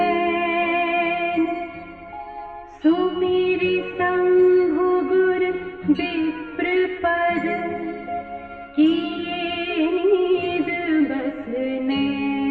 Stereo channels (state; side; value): identical; both; correlation 1.00